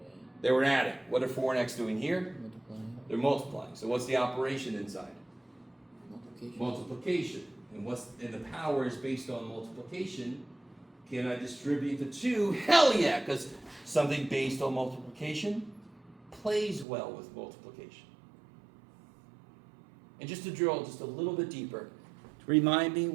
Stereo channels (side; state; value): left; drops out; at 16.9 s